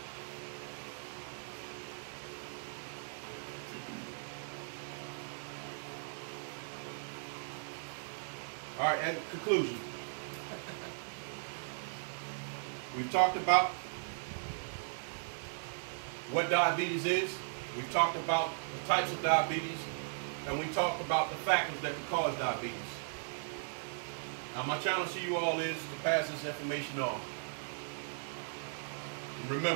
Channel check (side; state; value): left; silent; digital silence